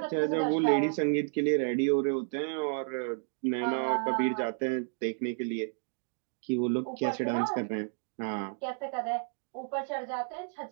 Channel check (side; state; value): left; silent; 57 dB below the other